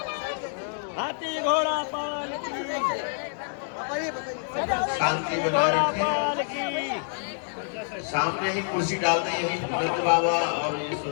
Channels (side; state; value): right; silent; 60 dB below the other